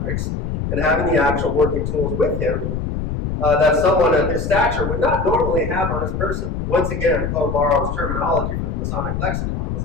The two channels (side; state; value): left; noise; rumble, 3 dB below the sound